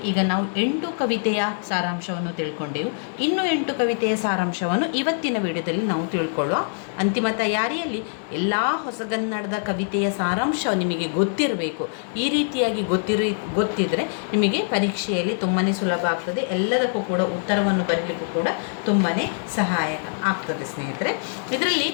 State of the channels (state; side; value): silent; right; digital silence